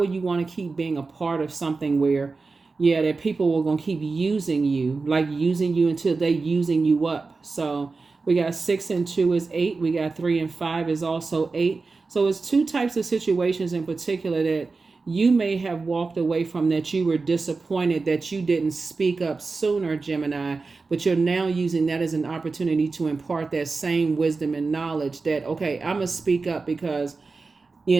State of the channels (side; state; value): left; quieter; 4.1 dB